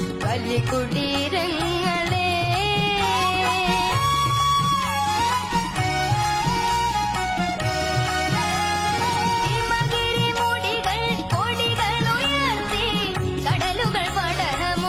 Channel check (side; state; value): both; identical; correlation 1.00